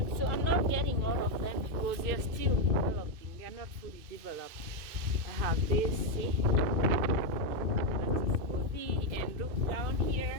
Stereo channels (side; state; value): left; late; 2.6 ms